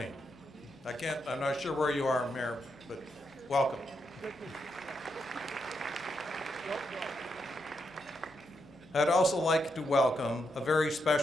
I'm not sure where you are, Mayor, but welcome. I'd also like to welcome a very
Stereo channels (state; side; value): noise; left; hum, 26 dB below the sound